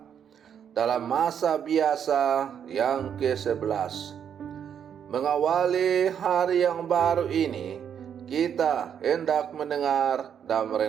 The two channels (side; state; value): left; quieter; 8.4 dB